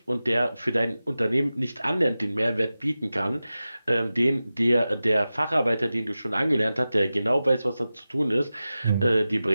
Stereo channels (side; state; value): both; inverted; correlation -0.95